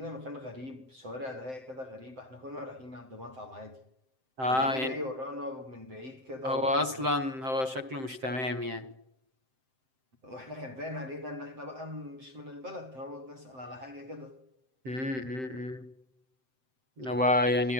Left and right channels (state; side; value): late; left; 7.7 ms